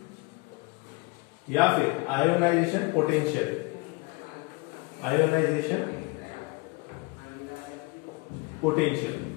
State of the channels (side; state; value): right; quieter; 25.2 dB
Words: या फिर आयोनाइजेशन पोटेंशियल। आयोनाइजेशन पोटेंशियल,